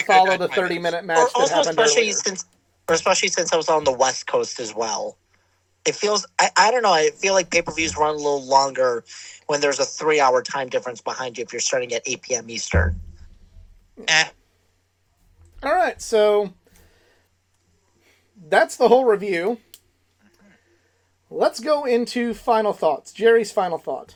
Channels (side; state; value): both; identical; correlation 1.00